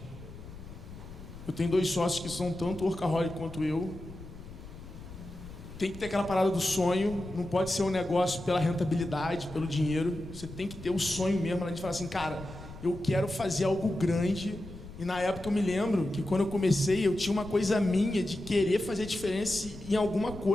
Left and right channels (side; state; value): left; noise; rumble, 15 dB below the sound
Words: Eu tenho 2 sócios que são tanto workaholic quanto eu. Tem que ter aquela parada do sonho, não pode ser um negócio pela rentabilidade, pelo dinheiro. Você tem que ter o sonho mesmo, a gente fala assim, cara, eu quero fazer algo grande. E na época eu me lembro que quando eu comecei, eu tinha uma coisa minha de querer fazer diferença em alguma